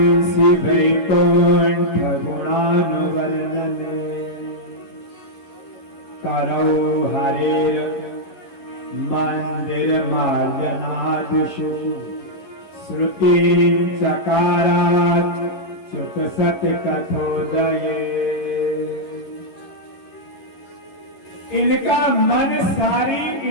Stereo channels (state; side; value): late; right; 11 ms